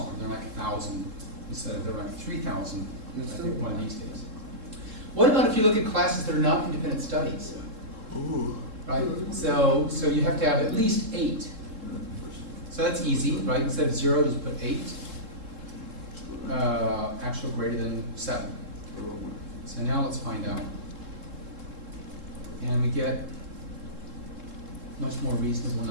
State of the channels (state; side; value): late; left; 3.7 ms